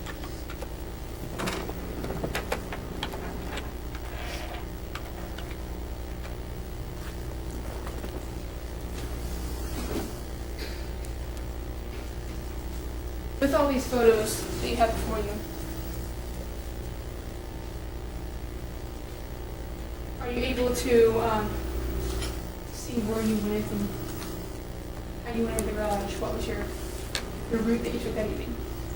With all these photos that you have before you, are you able to see where you went and how you went into the garage? What was your route that you took that evening?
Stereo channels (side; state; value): both; identical; correlation 1.00